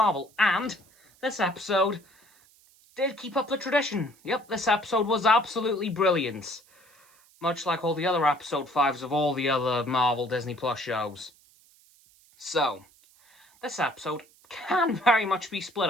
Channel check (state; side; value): noise; right; hiss, 29 dB below the sound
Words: and this episode did keep up the tradition. Yep, this episode was absolutely brilliant. Much like all the other episode 5s of all the other Marvel Disney Plus shows. So, this episode can very much be split